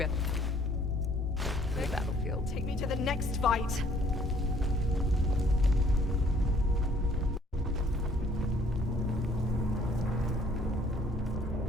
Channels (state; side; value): normal; both; correlation 0.60